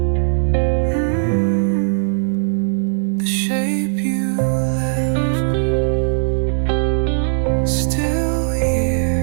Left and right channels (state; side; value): silent; left; 67 dB below the other